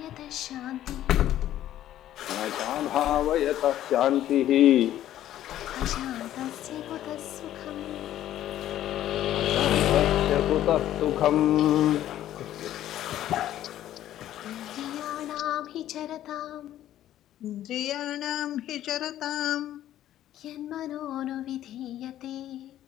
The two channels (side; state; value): right; quieter; 12.5 dB